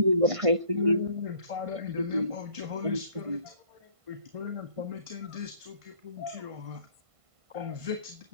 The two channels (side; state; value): left; late; 1.5 ms